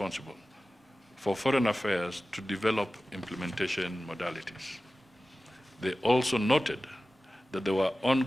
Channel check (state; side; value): normal; both; correlation 0.95